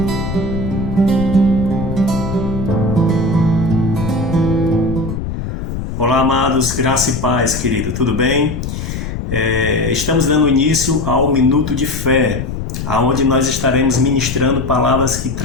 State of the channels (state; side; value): noise; left; rumble, 5 dB below the sound